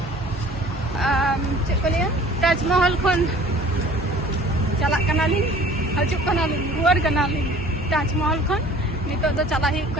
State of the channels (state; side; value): normal; both; correlation 0.48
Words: चेक को लिया ताजमहल खन चला कना ली हजु कना ली रुआर कना ली ताजमहल खन नितो दो चला ही